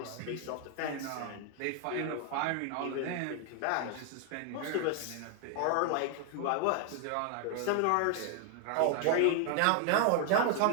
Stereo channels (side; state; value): both; different; correlation 0.00